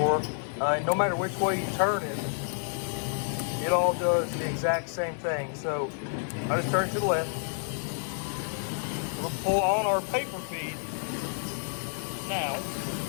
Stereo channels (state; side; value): silent; right; 58 dB below the other